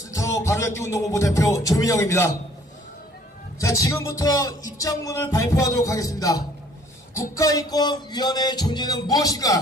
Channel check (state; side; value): normal; both; correlation 0.58